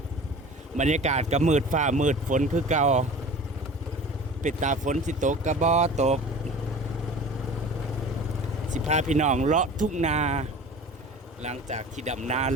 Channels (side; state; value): both; normal; correlation 0.40